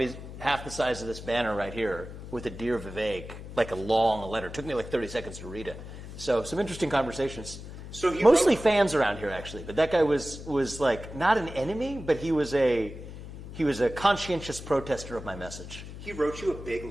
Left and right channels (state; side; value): noise; left; hum, 12 dB below the sound